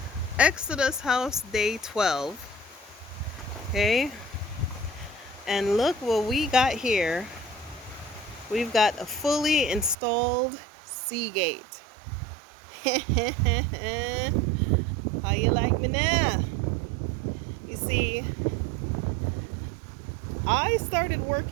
Exodus house day 12. Okay, and look what we got here. We've got a fully installed Seagate. How you like me now? You see, I started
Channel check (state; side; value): drops out; left; at 10.0 s